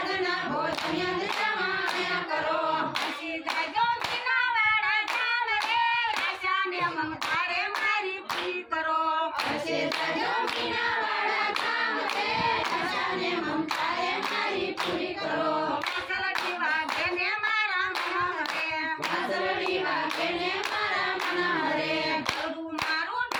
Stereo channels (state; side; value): identical; both; correlation 1.00